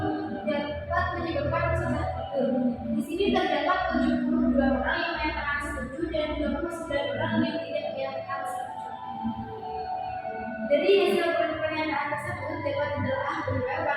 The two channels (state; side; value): identical; both; correlation 1.00